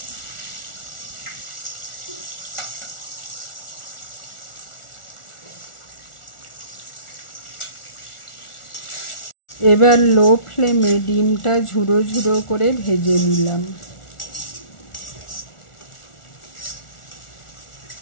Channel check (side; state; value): right; late; 1.4 ms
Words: এবার লো ফ্লেমে ডিমটা ঝুড়ো ঝুড়ো করে ভেজে নিলাম।